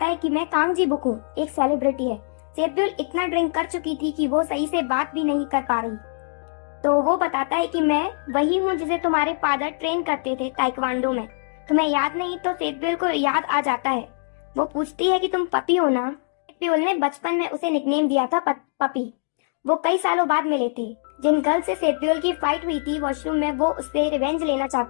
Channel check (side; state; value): right; silent; digital silence